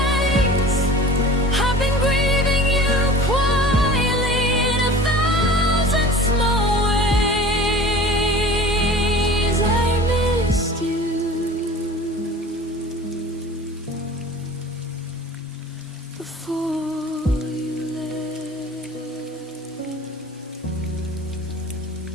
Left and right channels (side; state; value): both; normal; correlation 0.41